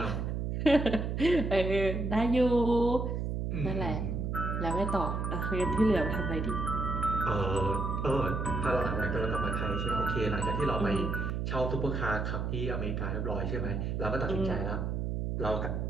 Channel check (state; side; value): noise; right; hum, 1 dB below the sound